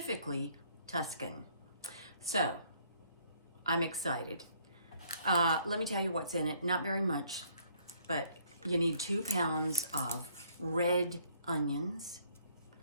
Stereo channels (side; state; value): both; inverted; correlation -0.65